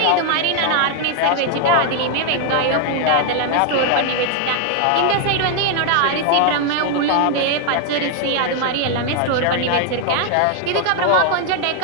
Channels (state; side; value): different; both; correlation 0.00